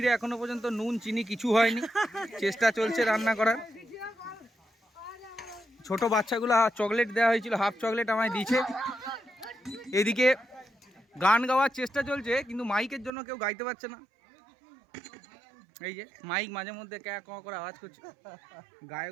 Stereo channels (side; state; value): left; drops out; at 13.1 s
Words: এখনো পর্যন্ত নুন চিনি কিছু হয়নি, চেষ্টা চলছে রান্না করার। ছোট বাচ্চাগুলো চকলেট দেওয়া হয়েছিল, হাফ চকলেট আমায় দিয়েছে। এদিকে গান গাওয়ার চেষ্টা চলছে কিন্তু মাইকের জন্য কেউ গাইতে পারছে না। এই যে মাইক মাঝে মধ্যে ক্যা ক করে আওয়াজ করছে,